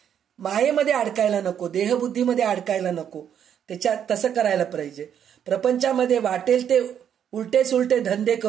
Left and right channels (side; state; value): left; quieter; 9.0 dB